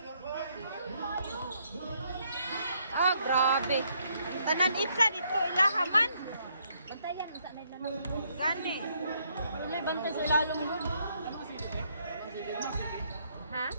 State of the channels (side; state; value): both; inverted; correlation -0.71